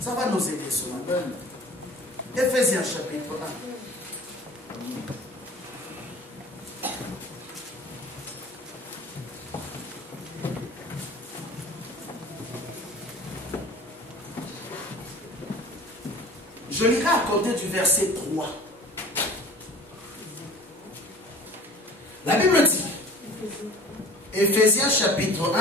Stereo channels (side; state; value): both; normal; correlation 0.43